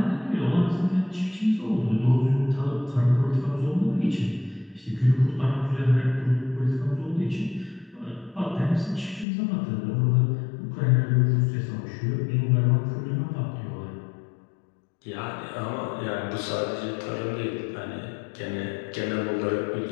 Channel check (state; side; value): drops out; right; at 9.2 s